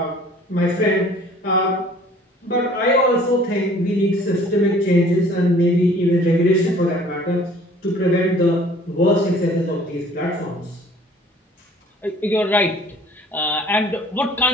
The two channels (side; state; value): both; normal; correlation 0.52